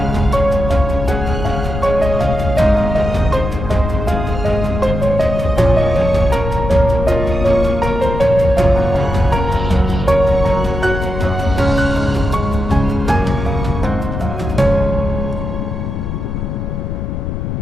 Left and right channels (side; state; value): left; noise; rumble, 4 dB below the sound